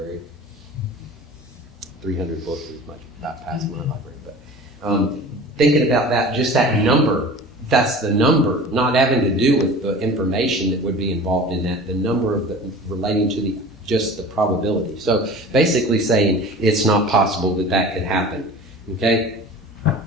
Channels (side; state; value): both; normal; correlation 0.39